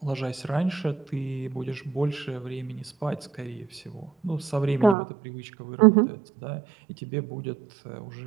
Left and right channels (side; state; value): left; drops out; at 5.0 s